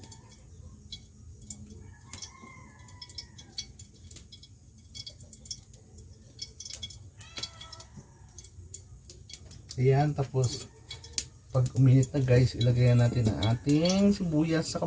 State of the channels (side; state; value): both; identical; correlation 1.00